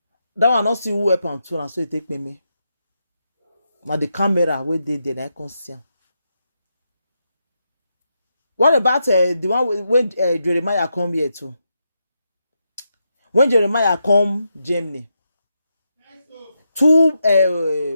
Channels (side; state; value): both; inverted; correlation -0.84